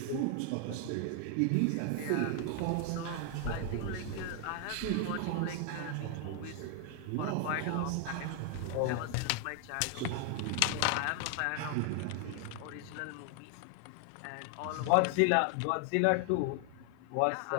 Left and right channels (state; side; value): different; both; correlation 0.00